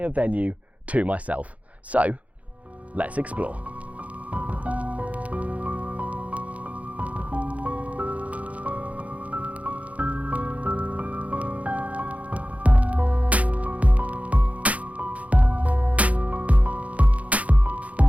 venue to myself. So, let's explore.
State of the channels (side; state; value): left; late; 0.068 ms